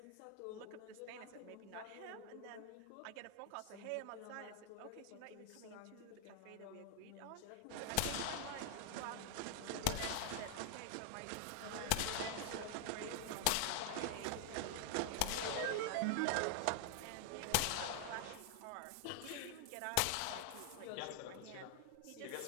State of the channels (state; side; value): different; both; correlation 0.00